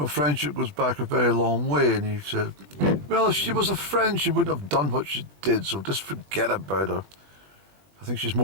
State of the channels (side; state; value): left; late; 20 ms